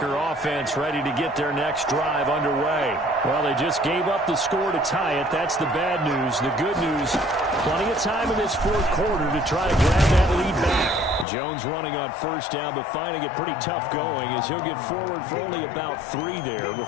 offense ready to get their next drive underway. Well, they just gave up the score to tie it. That's the bad news. The good news, plenty of time in this fourth quarter to try to grab that lead back. Jones running on 1st down, but finding it pretty tough going as he'll get forward for only about 3 there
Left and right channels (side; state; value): right; drops out; at 11.2 s